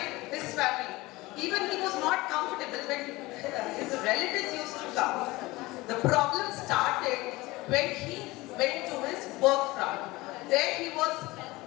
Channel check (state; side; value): quieter; right; 20.7 dB